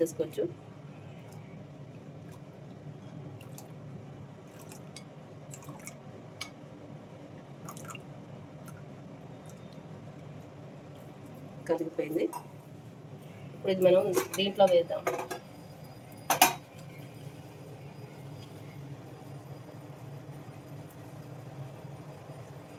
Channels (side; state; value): both; identical; correlation 1.00